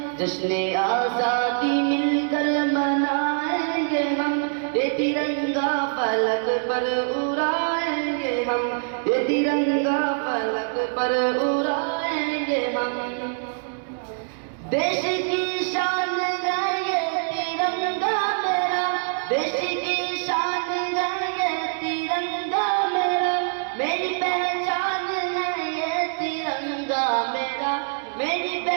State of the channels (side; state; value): left; silent; digital silence